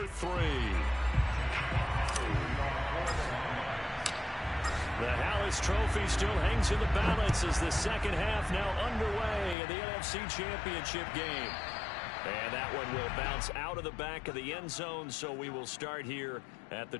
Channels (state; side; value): drops out; right; at 9.6 s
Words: 3. The Hallis Trophy still hangs in the balance as the second half now underway in the NFC Championship game. And that one will bounce out of the back of the end zone, so we will start here at the